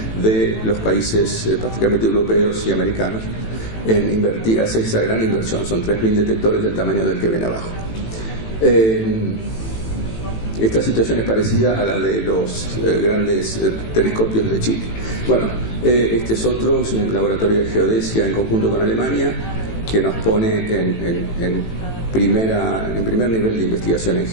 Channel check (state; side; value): late; right; 18 ms